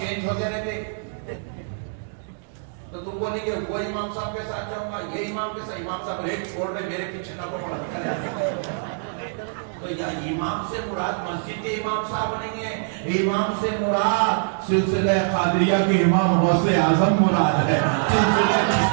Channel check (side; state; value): left; silent; digital silence